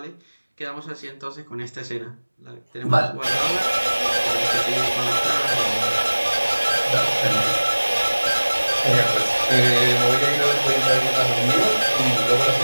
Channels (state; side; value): inverted; both; correlation -1.00